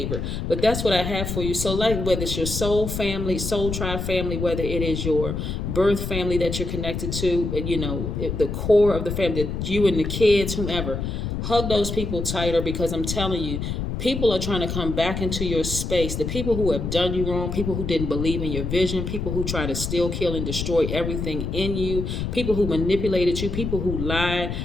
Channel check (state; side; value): noise; left; rumble, 4 dB below the sound